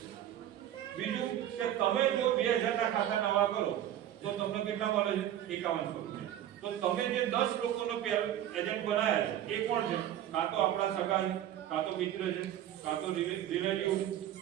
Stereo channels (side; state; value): left; quieter; 11.6 dB